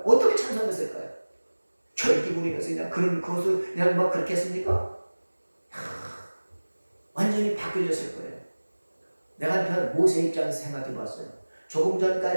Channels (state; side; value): inverted; both; correlation -1.00